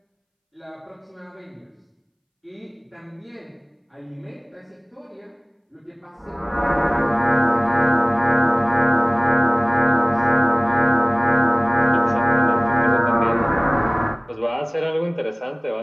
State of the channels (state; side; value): identical; both; correlation 1.00